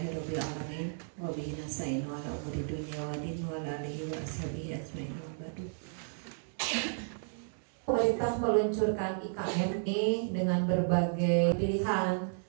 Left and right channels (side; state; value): left; silent; digital silence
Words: alamin wa bihi nasta'in ala umuri dunya wa din wa ala alihi wa ashabihi ajmain wa ba'du. Pemerintah meluncurkan IKM ini dengan berbagai pilihan,